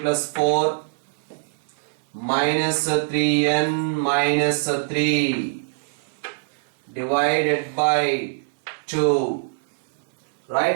4 minus 3n minus 3 divided by 2,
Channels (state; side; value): silent; left; 61 dB below the other